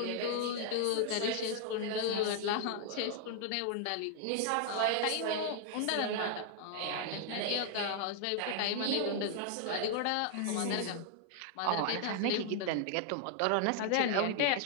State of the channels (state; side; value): different; both; correlation 0.00